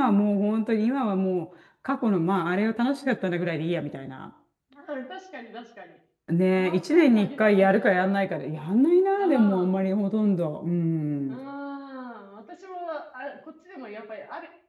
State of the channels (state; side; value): identical; both; correlation 1.00